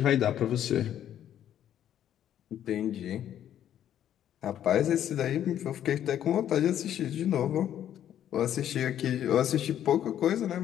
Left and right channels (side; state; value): right; quieter; 10.7 dB